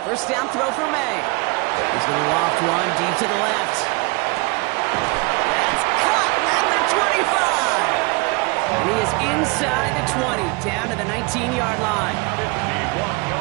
First down throw for May. He's going to loft one deep to the left. That's cut at the 25. And he is inside the 20, down to the 19-yard line.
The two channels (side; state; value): left; quieter; 27.4 dB